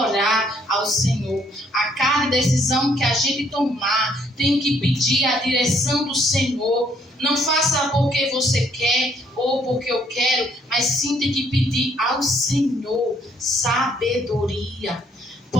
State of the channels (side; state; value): both; normal; correlation 0.67